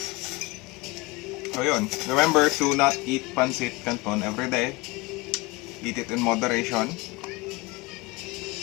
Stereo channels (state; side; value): quieter; right; 23.9 dB